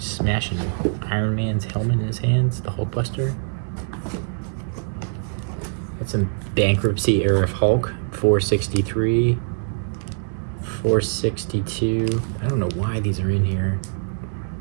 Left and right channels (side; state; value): left; silent; digital silence